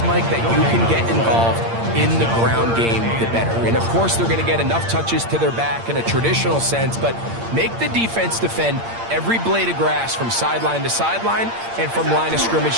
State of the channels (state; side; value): late; left; 8.7 ms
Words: Mike, that you can get involved in the ground game, the better. And, of course, they're going to get enough touches to their back in a traditional sense, but make the defense defend every blade of grass from sideline to sideline and from line of scrimmage